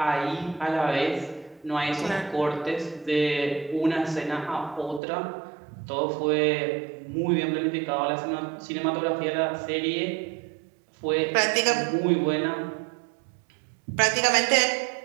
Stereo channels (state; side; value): drops out; left; at 5.0 s